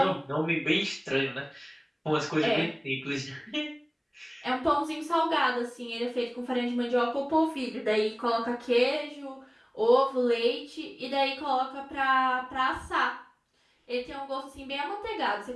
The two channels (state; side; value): identical; both; correlation 1.00